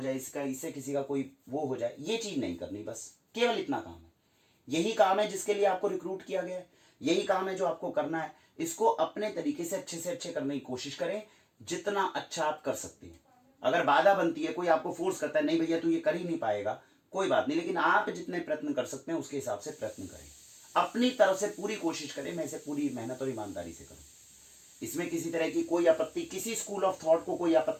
जाए, इससे किसी का कोई वो हो जाए, ये चीज नहीं करनी। बस केवल इतना काम है। यही काम है जिसके लिए आपको रिक्रूट किया गया है, यही काम है जो आपको करना है। इसको अपने तरीके से अच्छे करने की कोशिश करें, जितना अच्छा आप कर सकते हैं। अगर बाधा बनती है, कोई आपको फोर्स करता है नहीं भैया तू ये कर ही नहीं पाएगा, कोई बात नहीं, लेकिन आप जितने प्रयत्न कर सकते हैं उसके हिसाब से प्रयत्न करें, अपनी तरफ से पूरी कोशिश करें, मैं इसे पूरी मेहनत और ईमानदारी से करूं। इसमें किसी तरह की कोई आपत्ति, किसी स्कूल ऑफ थॉट को कोई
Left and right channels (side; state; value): both; identical; correlation 1.00